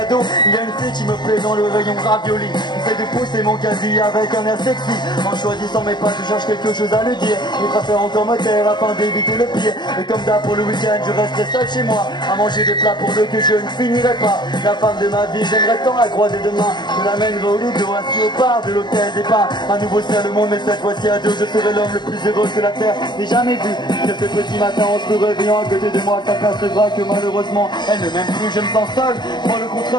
Il y a une fille qui me plaît dans le rayon ravioli. J'essaie de pousser mon casier avec un air sexy. En choisissant mes pas je cherche quelque chose à lui dire. Je préfère encore me taire afin d'éviter le pire. Et comme d'hab pour le week-end je resterai seul chez moi à manger des plats pour deux que je ne finirai pas. La femme de ma vie j'aimerais tant la croiser demain. Je l'amènerai au Lido, assis au bar de l'hôtel des Pins. Un nouveau ciel le monde, mais cette fois-ci à deux. Je serai l'homme le plus heureux que la terre n'ait jamais vu. Que ce petit matin en se réveillant à côté de moi, ça percevra que malheureusement elle ne m'aime plus. Je me sens seul, moi le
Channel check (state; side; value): late; right; 0.21 ms